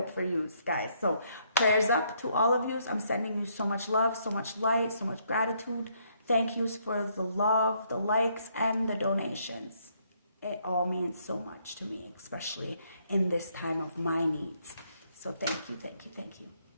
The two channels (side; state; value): both; inverted; correlation -0.71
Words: for you guys. So prayers up to all of you. I'm sending you so much love, so much light, so much gratitude. Thank yous for the love, the likes, and the donations. It all means so much to me, especially in this time of my needs. So thank you, thank you, thank you.